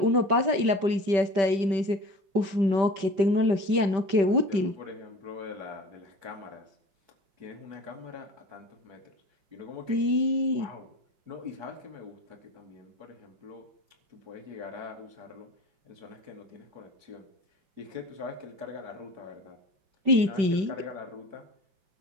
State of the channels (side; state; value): left; late; 5.1 ms